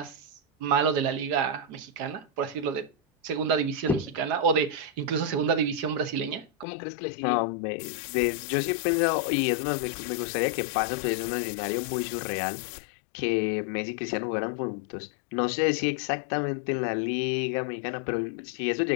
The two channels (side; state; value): right; drops out; at 6.7 s